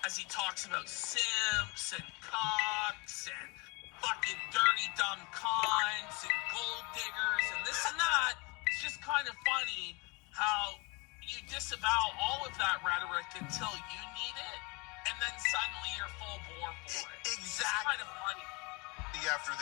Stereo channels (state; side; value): quieter; right; 28.5 dB